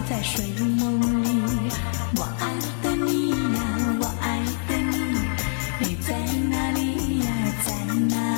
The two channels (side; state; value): right; silent; digital silence